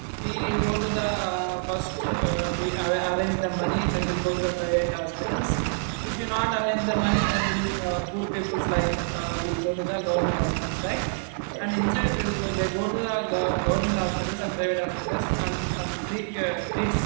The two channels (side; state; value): left; silent; digital silence